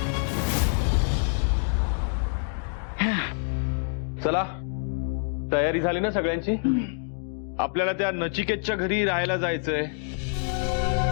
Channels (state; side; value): silent; right; digital silence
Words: चला, तयारी झाली ना सगळ्यांची? आपल्याला त्या नचिकेतच्या घरी राहायला जायचंय.